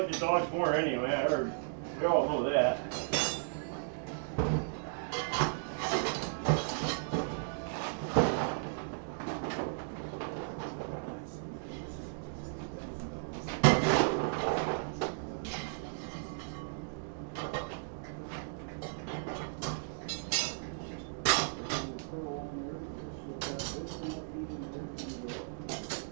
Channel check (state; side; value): silent; left; digital silence